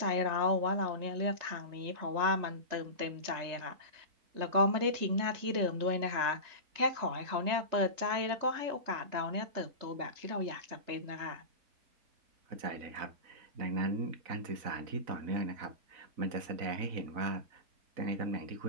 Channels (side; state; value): left; late; 3.3 ms